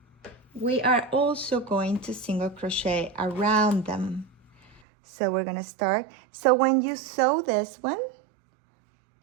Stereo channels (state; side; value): drops out; left; at 4.8 s